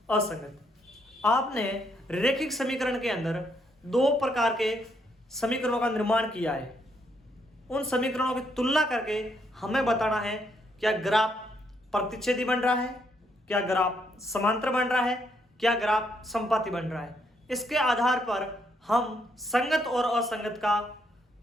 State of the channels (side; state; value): both; normal; correlation 0.74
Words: असंगत। आपने रैखिक समीकरण के अंदर 2 प्रकार के समीकरणों का निर्माण किया है। उन समीकरणों की तुलना करके हमें बताना है क्या ग्राफ प्रतिच्छेदी बन रहा है, क्या ग्राफ समांतर बन रहा है, क्या ग्राफ समपाती बन रहा है। इसके आधार पर हम संगत और असंगत का